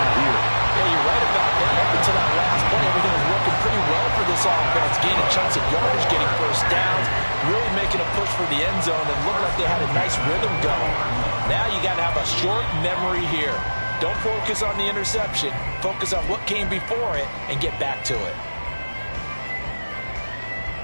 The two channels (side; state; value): both; inverted; correlation -1.00